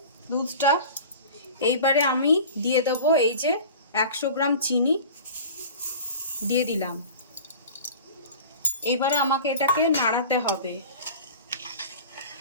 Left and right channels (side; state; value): both; inverted; correlation -0.39